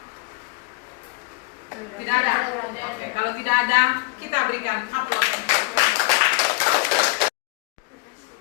Tidak ada. Oke, kalau tidak ada, kita berikan aplaus.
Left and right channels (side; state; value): right; quieter; 26.7 dB